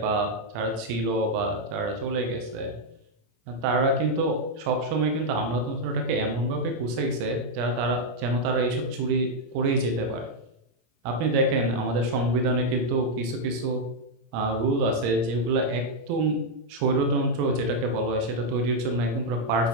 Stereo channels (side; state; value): left; late; 18 ms